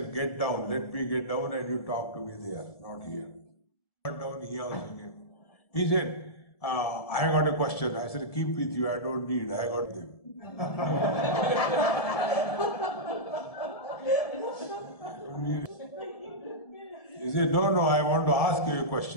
get down, let me get down and you talk to me there, not here. Got down, he also came. He said, I got a question. I said, keep with you, I don't need, I got them. He said, no, I want to ask you a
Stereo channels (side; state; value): right; late; 1.7 ms